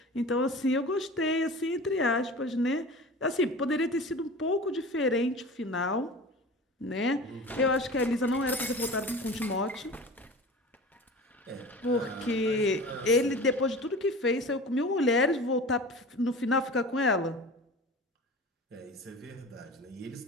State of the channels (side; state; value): both; normal; correlation 0.36